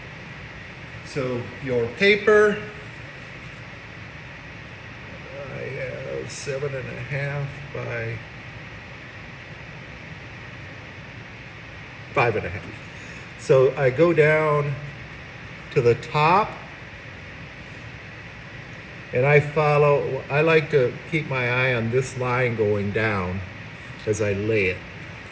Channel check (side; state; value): both; identical; correlation 1.00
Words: So your paper, I have 7.5 by 5.5. So I go down to the top, and I like to keep my eye on this line going down as I lay it.